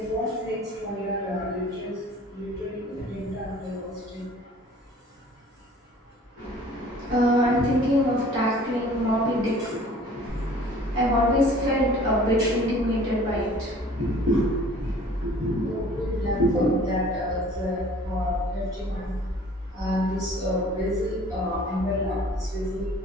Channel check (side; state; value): both; normal; correlation 0.50